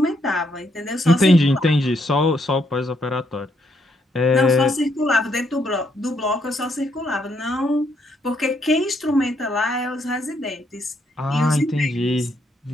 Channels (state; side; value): normal; both; correlation 0.74